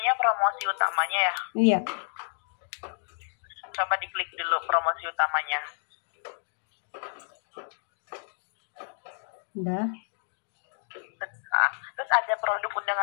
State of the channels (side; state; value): right; silent; digital silence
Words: promosi utamanya ya. Iya. Coba diklik dulu promosi utamanya. Udah. Nah, terus ada produk